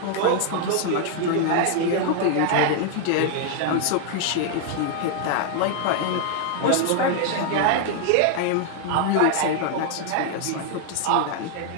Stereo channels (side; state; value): both; different; correlation 0.00